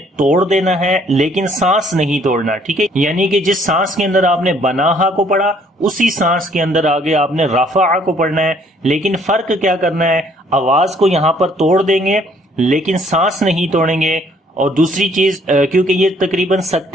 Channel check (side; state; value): both; normal; correlation 0.62